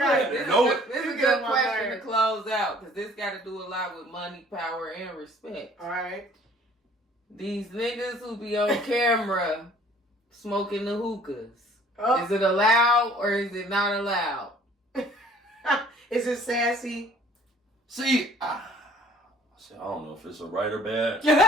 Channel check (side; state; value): both; normal; correlation 0.55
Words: This is a good question to close out because this got to do a lot with money, power, and respect. All right. These niggas who be on camera smoking the hookahs. Oh. Is it allowed or is it not allowed? Is it sassy? See, I don't know if it's a right or bad.